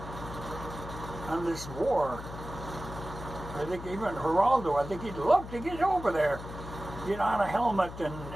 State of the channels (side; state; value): left; noise; hum, 11 dB below the sound